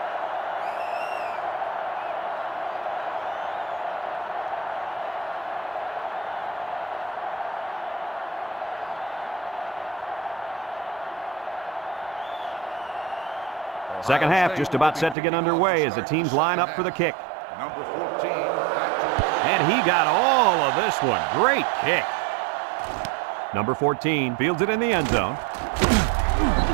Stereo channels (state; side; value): drops out; left; at 15.2 s